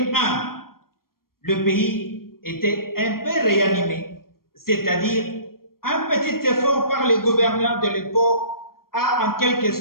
le pays était un peu réanimé, c'est-à-dire un petit effort par les gouverneurs de l'époque a en quelque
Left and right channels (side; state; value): right; late; 0.93 ms